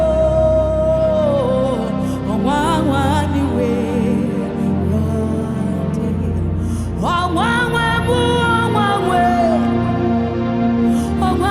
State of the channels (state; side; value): identical; both; correlation 1.00